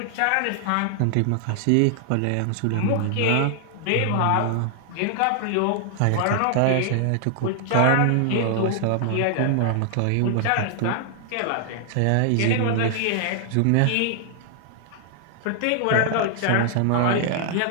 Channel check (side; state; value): both; different; correlation 0.00